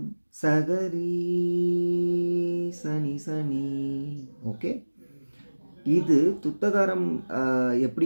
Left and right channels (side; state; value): both; inverted; correlation -1.00